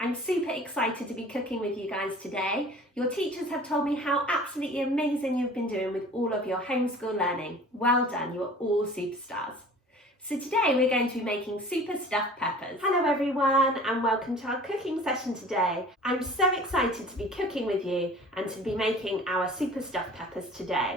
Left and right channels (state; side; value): normal; both; correlation 0.44